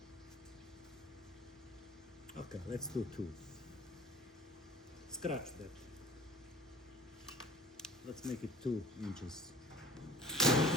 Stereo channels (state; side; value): normal; both; correlation 0.45